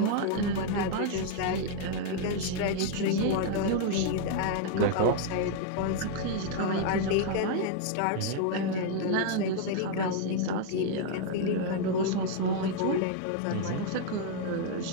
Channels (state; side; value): different; both; correlation 0.00